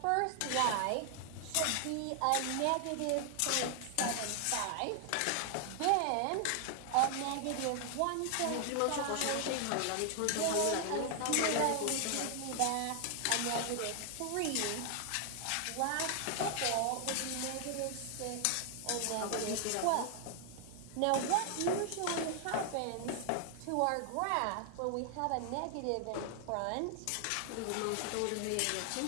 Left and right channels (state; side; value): different; both; correlation 0.00